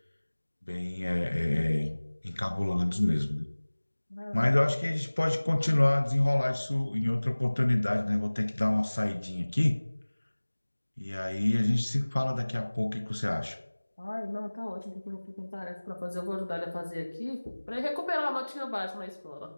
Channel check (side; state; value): both; inverted; correlation -1.00